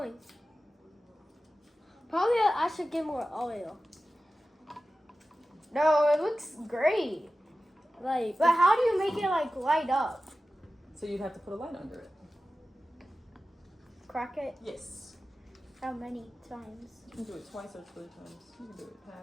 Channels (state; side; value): normal; both; correlation 0.94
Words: Probably I should get more oil. no, it looks great. Like, But how do you make it like light up? so you'd have to put a light under it. Crack it? Yes. How many times? You can do it twice or 3 times. You can do it